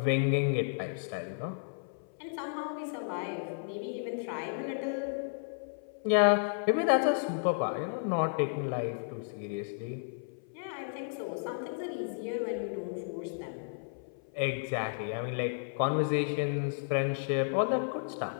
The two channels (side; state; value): right; silent; 56 dB below the other